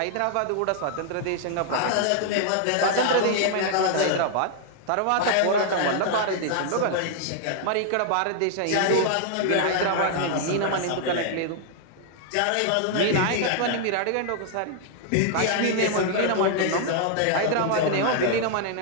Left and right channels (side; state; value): both; different; correlation 0.00